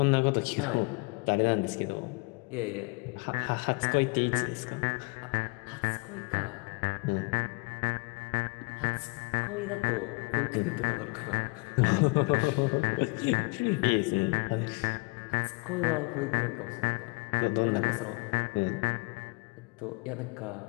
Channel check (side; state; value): right; quieter; 29.2 dB